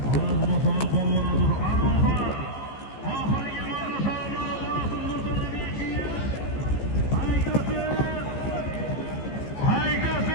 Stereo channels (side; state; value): right; late; 15 ms